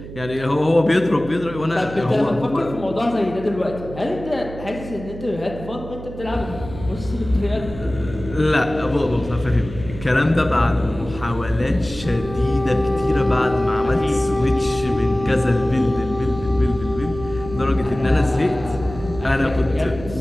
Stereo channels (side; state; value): right; noise; hum, 13 dB below the sound